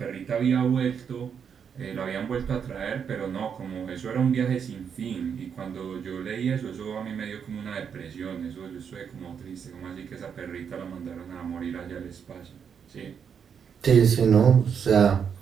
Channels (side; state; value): left; quieter; 7.2 dB